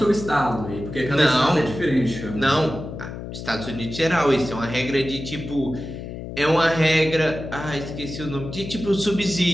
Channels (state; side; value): noise; left; hum, 9 dB below the sound